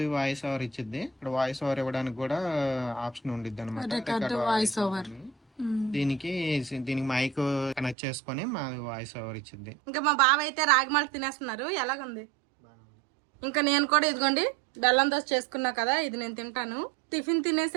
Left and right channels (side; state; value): left; drops out; at 8.0 s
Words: వాయిస్ ఓవర్ ఇచ్చిద్ది. ఇక్కడ వాయిస్ ఓవర్ ఇవ్వడానికి కూడా ఆప్షన్ ఉండిద్ది అనమాట. దీనికి మైక్ కనెక్ట్ చేసుకొని మా వాయిస్ ఓవర్ ఇచ్చింది. ఇంకా మా బావ అయితే రాగి మాల్ట్ తినేస్తున్నారు, ఎలాగుంది? ఇంకా నేను కూడా ఇదిగోండి బెల్లం దోశ చేసుకున్నా కదా, ఇది నేను తింటాను. టిఫిన్